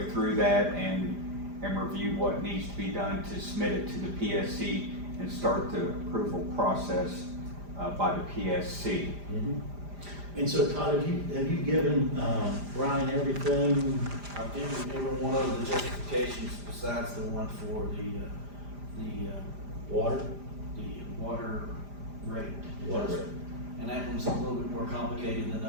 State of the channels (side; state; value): left; late; 5.0 ms